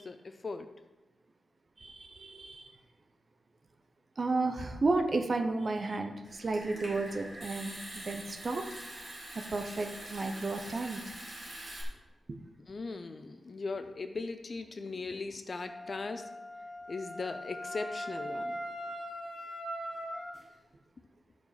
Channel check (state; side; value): normal; both; correlation 0.91